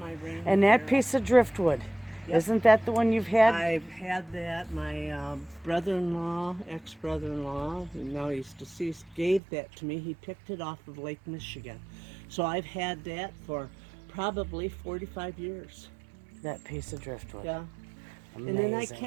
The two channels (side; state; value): left; drops out; at 9.4 s